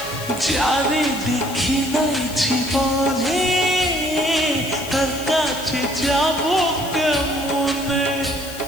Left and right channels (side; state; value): left; noise; hiss, 13 dB below the sound